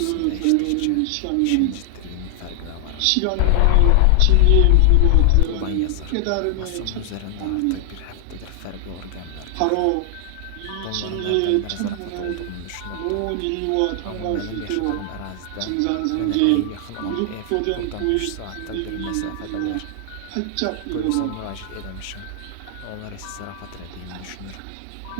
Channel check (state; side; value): different; both; correlation 0.00